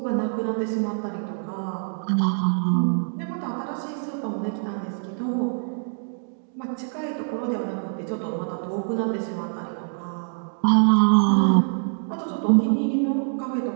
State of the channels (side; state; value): left; silent; 62 dB below the other